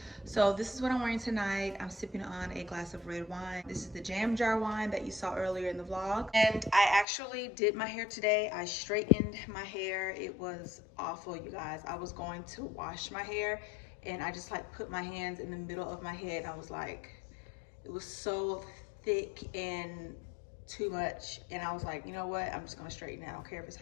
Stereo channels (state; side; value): drops out; right; at 7.1 s